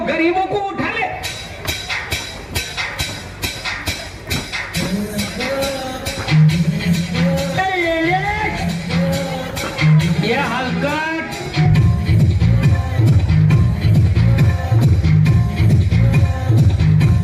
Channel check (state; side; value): identical; both; correlation 1.00